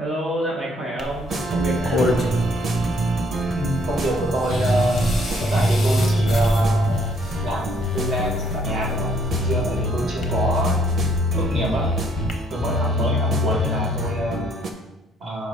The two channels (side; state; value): both; normal; correlation 0.65